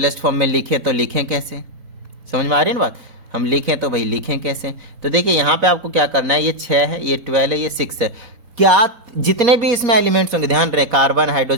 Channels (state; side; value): late; left; 4.0 ms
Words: फॉर्म में लिखें तो लिखें कैसे, समझ में आ रही है ना बात। हम लिखें तो भाई लिखें कैसे, तो देखिए यहाँ पे आपको क्या करना है, ये 6 है, ये 12 है, ये 6 है। क्या जितने भी इसमें एलिमेंट्स होंगे, ध्यान रहे, कार्बन